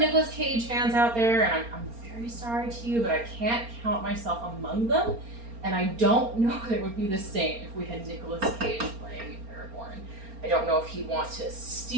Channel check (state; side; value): late; left; 4.3 ms